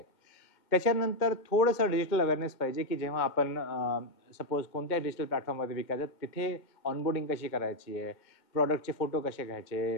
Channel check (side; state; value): right; late; 2.1 ms